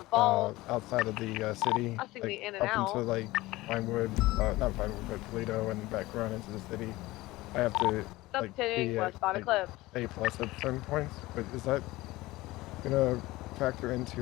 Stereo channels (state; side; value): quieter; right; 19.1 dB